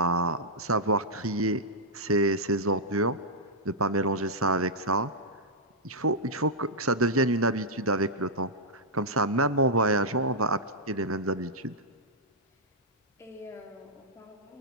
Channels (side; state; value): both; normal; correlation -0.10